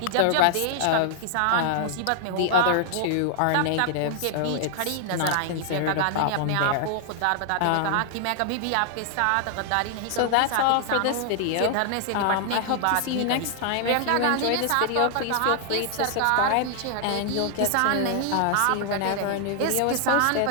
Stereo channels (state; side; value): different; both; correlation 0.00